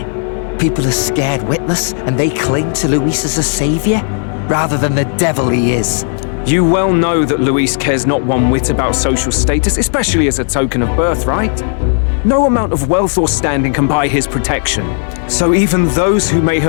people are scared witless, and they cling to Luis as a savior, rather than the devil he is. You well know that Luis cares not one whit about social status, especially as a token of birthright. No amount of wealth or standing can buy his protection. So even those who may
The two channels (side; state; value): right; silent; 70 dB below the other